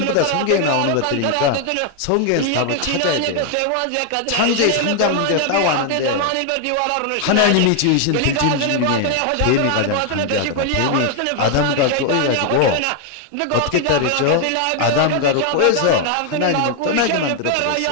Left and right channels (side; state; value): both; different; correlation 0.00